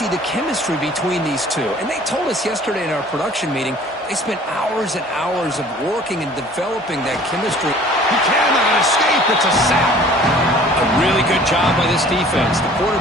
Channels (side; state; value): both; normal; correlation 0.50